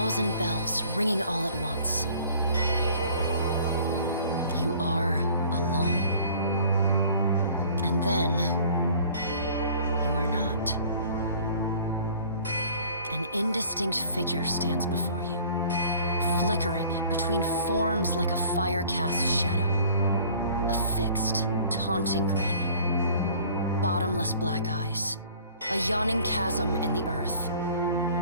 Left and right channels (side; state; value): both; inverted; correlation -0.51